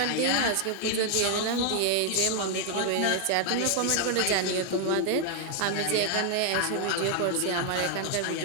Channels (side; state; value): both; different; correlation 0.00